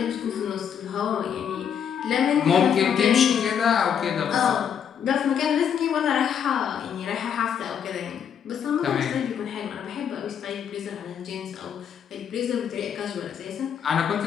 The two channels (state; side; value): quieter; right; 8.2 dB